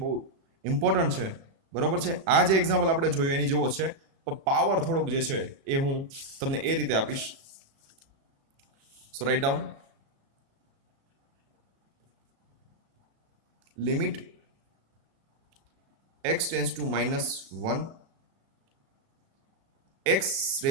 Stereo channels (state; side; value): late; left; 36 ms